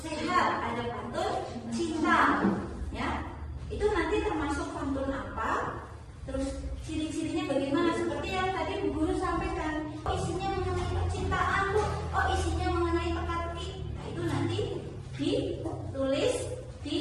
ada pantun cinta. Ya, itu nanti termasuk pantun apa? Terus ciri-cirinya bagaimana? Seperti yang tadi Bu Guru sampaikan. Oh, isinya mengenai percintaan, Bu. Oh, isinya mengenai teka-teki. Nah, itu nanti ditulis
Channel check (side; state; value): both; identical; correlation 1.00